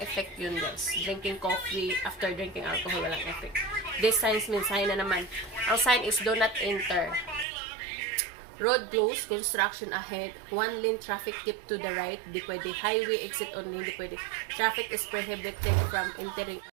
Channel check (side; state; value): left; drops out; at 7.5 s